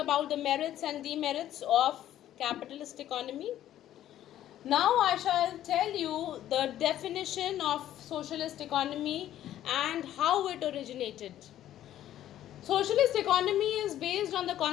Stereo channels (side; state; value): right; quieter; 12.3 dB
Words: the merits and demerits of capitalist economy. Now I shall tell you the definition of socialist economy and how it originated. Socialist economy is based on the